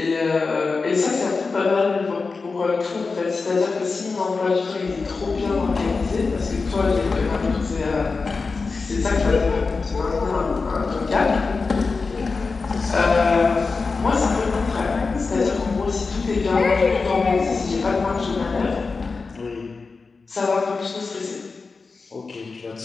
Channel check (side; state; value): right; quieter; 4.3 dB